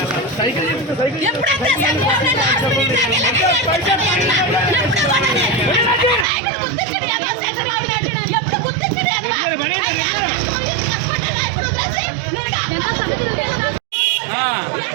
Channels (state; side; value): drops out; left; at 6.2 s